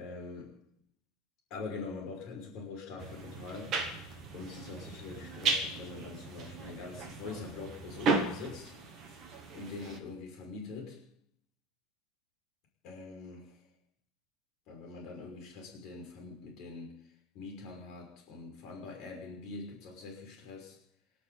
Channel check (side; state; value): both; normal; correlation 0.31